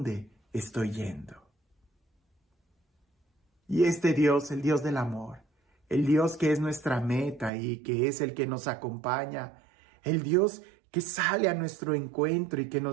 estoy yendo? Y este Dios, el Dios del amor, el Dios que es nuestra meta y que es el que nos acompaña, el Dios que sale a nuestro encuentro y que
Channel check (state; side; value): drops out; left; at 7.5 s